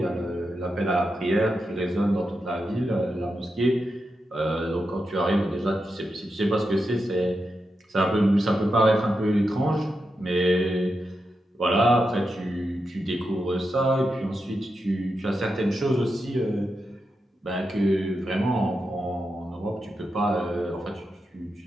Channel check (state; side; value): normal; both; correlation 0.87